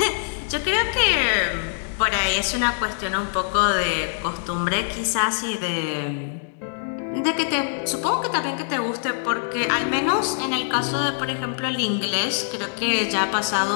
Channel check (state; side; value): silent; right; digital silence